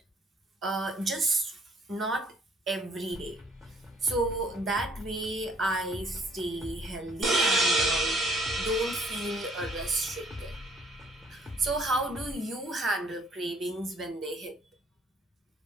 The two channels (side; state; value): both; normal; correlation 0.61